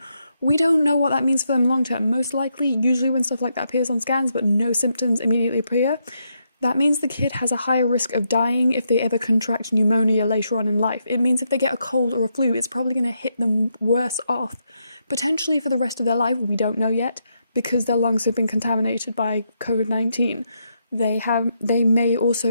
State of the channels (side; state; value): both; inverted; correlation -0.80